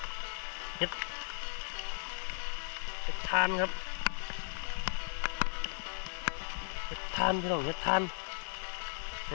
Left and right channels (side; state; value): right; silent; digital silence